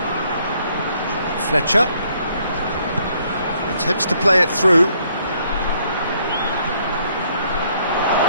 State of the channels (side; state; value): both; inverted; correlation -0.68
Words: Fletcher attempts to play it through.